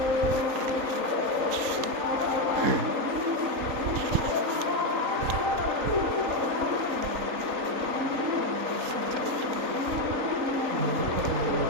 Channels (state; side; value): late; left; 3.8 ms